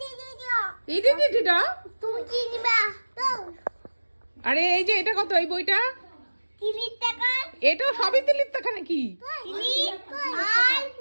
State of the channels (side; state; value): both; inverted; correlation -1.00